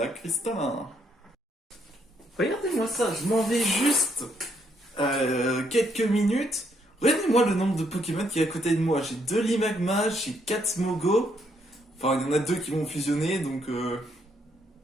cristallin. Regardez-moi ça, je m'en vais juste quelques minutes. Regardez-moi le nombre de Pokémon qui est à côté de moi. J'ai 2 Limagma, j'ai 4 Smogo. Enfin, il y en a 2 qui vont fusionner, donc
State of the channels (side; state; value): both; normal; correlation 0.73